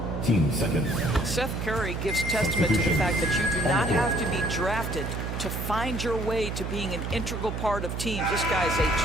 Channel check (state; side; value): noise; right; hum, 4 dB below the sound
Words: team second. Seth Curry gives testament to the fact that you do not have to be drafted to find your way to being an integral part of teams. This guy's a